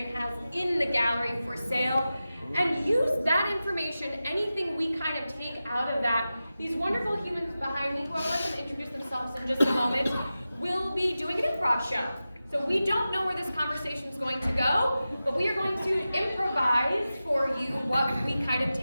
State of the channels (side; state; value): both; inverted; correlation -0.94